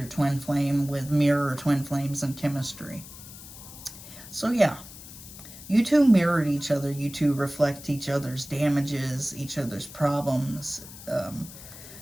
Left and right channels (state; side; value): noise; left; hiss, 16 dB below the sound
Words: twin flame with mirror or twin flames and chemistry? So yeah, you two mirrored each other. You two reflect each other's damages, each other's problems.